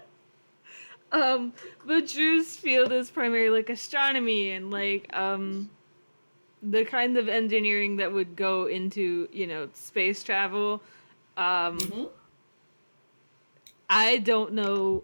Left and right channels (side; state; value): both; inverted; correlation -1.00